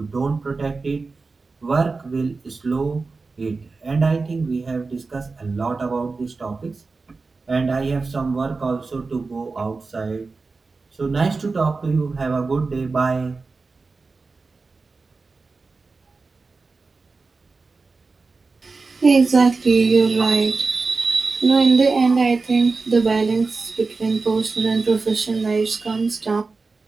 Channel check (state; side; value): quieter; left; 4.1 dB